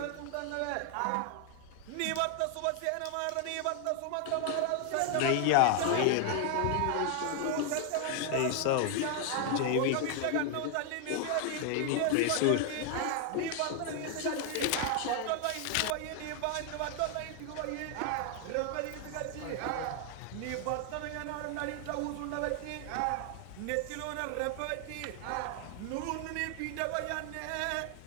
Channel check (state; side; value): different; both; correlation 0.00